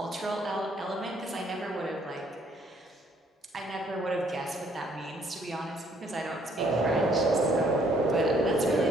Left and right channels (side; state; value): both; normal; correlation 0.64